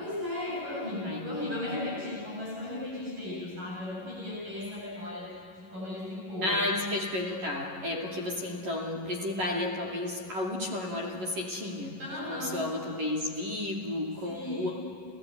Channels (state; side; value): late; left; 11 ms